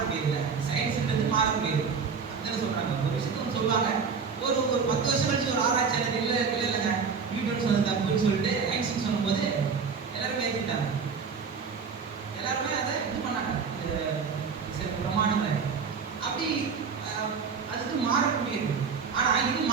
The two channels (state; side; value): quieter; left; 5.7 dB